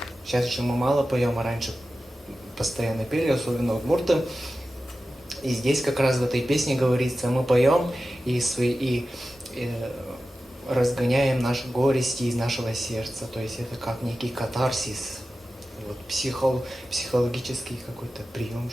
Сейчас еще мы мало поем, а раньше постоянно пели, особенно удмурты. И здесь как раз в этой песне говорится, мы поем и разгоняем наши горести из нашего сердца. То есть это как некий катарсис, вот, психологический какой-то прием,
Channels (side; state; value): both; normal; correlation 0.94